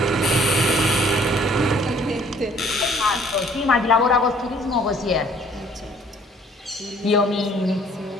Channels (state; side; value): normal; both; correlation 0.58